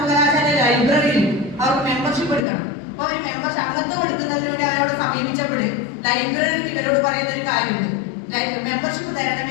ലൈബ്രറിയിൽ അവർക്ക് മെമ്പർഷിപ്പ് എടുക്കണം. അപ്പൊ അവർ അംഗത്വം എടുക്കുന്നതിലൂടെ അവരോട് സമീപിച്ചപ്പോൾ ലൈബ്രറിയിൽ ഇവരോട് പറയുന്ന ഒരു കാര്യമുണ്ട്, മെമ്പർഷിപ്പ്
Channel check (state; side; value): drops out; right; at 2.5 s